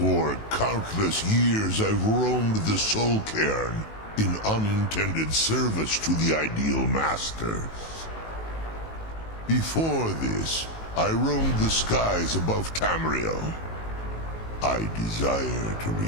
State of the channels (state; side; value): late; right; 19 ms